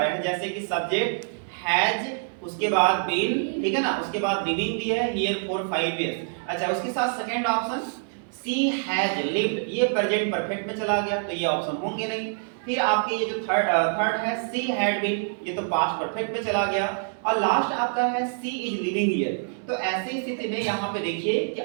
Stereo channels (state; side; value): silent; left; digital silence